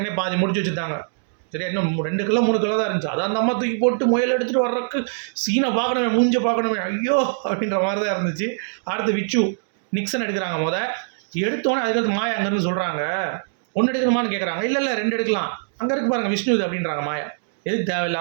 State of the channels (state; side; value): silent; left; digital silence